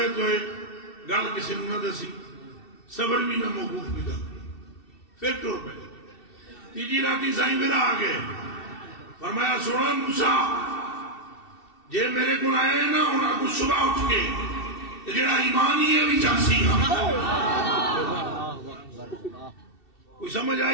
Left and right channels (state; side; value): late; right; 2.7 ms